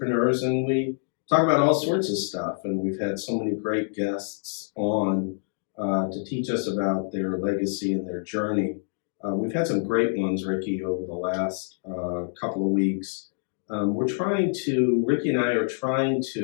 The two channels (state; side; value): silent; right; digital silence